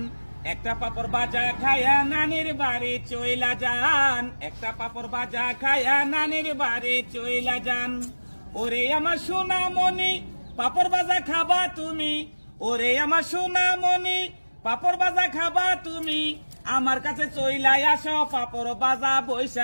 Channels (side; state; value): both; inverted; correlation -1.00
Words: একটা পাপড় বাজা খায়া নানির বাড়ি চইলা যান, একটা পাপড় বাজা খায়া নানির বাড়ি চইলা যান। ওরে আমার সোনামণি পাপড় বাজা খাবা তুমি, ওরে আমার সোনামণি পাপড় বাজা খাবা তুমি, আমার কাছে চইলাই আসো পাপড় বাজা